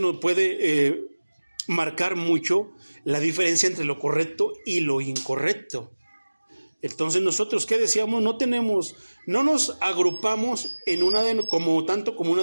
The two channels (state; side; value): inverted; both; correlation -1.00